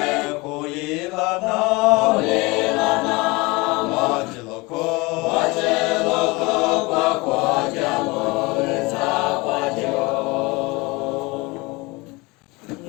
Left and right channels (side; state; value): right; quieter; 24.5 dB